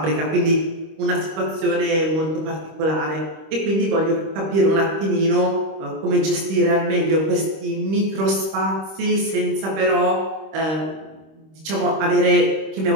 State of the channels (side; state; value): left; late; 26 ms